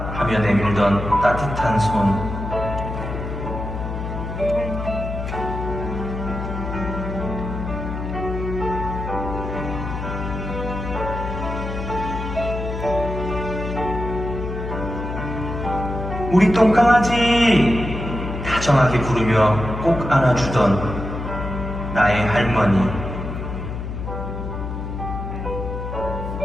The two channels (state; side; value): noise; left; hum, 6 dB below the sound